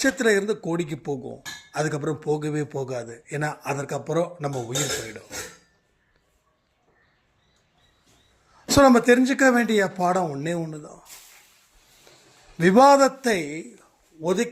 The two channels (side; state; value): both; identical; correlation 1.00